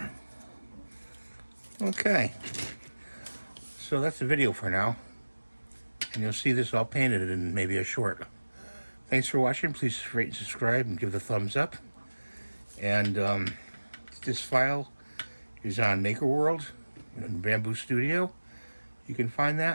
Okay. So that's the video for now. And you'll see this all painted in maybe a short. Thanks for watching. Please rate and subscribe and give the thumbs up. And this file is on Maker World in Bamboo Studio. You can find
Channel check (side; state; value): both; inverted; correlation -1.00